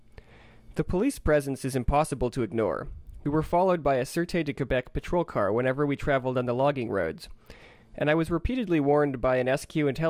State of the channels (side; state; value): both; identical; correlation 1.00